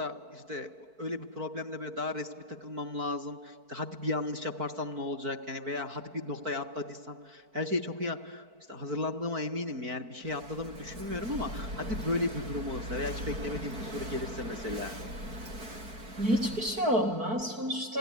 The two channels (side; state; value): left; late; 4.5 ms